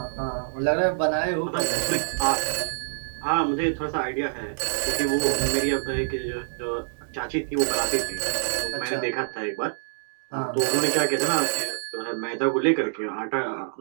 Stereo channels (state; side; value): silent; left; digital silence